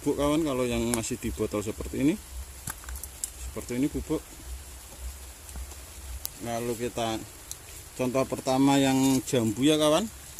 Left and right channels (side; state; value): both; identical; correlation 1.00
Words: kawan. Kalau yang masih di botol seperti ini bubuk. Lalu kita contoh pertama yang jambu ya kawan,